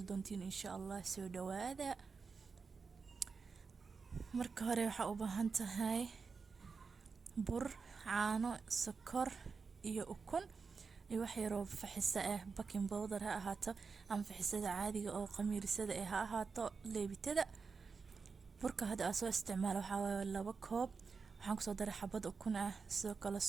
دونتين إن شاء الله سو دوادا marka hore waxaa u baahan tahay bur caano sokor iyo ukun iyo wax yar oo faxisa ah baking powder ha ahaato ama faxisada caadiga oo qamiirsada ha ahaato leebitada burka hadda aan soo isticmaalo waxaa waaye 2 koob waxaan kusoo daray xabad ukun ah sidoo kale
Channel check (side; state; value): left; quieter; 5.0 dB